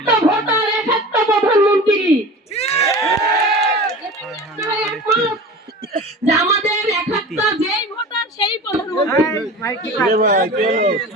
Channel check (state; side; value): normal; both; correlation 0.35